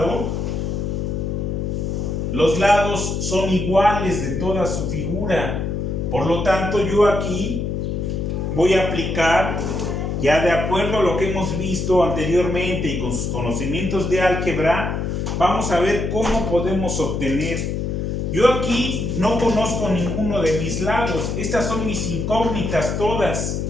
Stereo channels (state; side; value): noise; left; hum, 2 dB below the sound